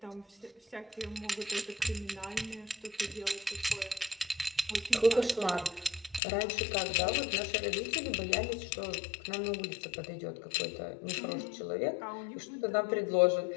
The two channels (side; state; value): right; drops out; at 6.2 s